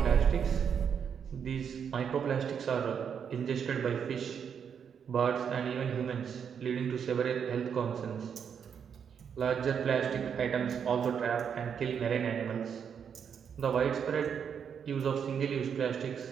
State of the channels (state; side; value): quieter; left; 7.4 dB